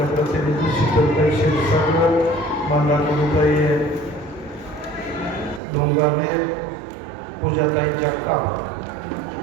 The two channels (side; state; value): left; drops out; at 5.6 s